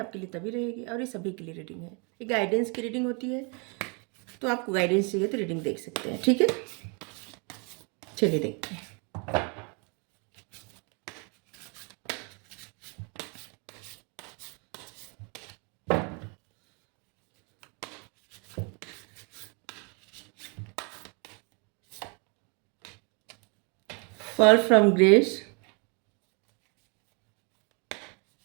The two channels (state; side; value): quieter; left; 34.1 dB